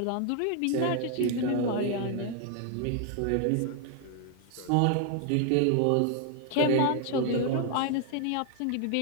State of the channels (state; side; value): different; both; correlation 0.00